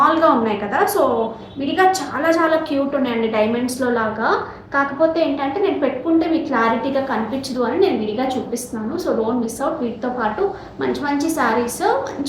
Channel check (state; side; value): identical; both; correlation 1.00